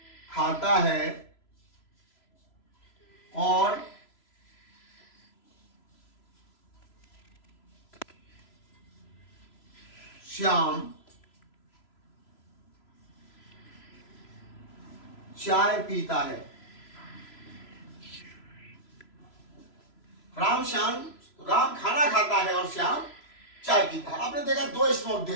खाता है और श्याम चाय पीता है। राम खाना खाता है और श्याम चाय पीता है। आपने देखा दो इसमें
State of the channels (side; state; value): right; late; 3.0 ms